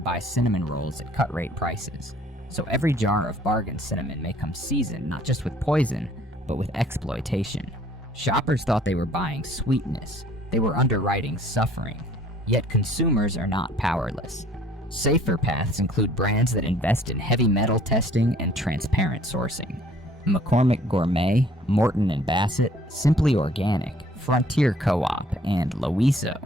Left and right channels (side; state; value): both; normal; correlation 0.57